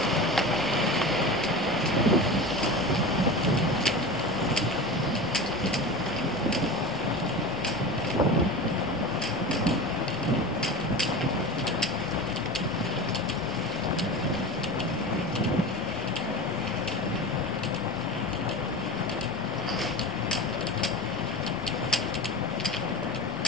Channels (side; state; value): both; normal; correlation 0.29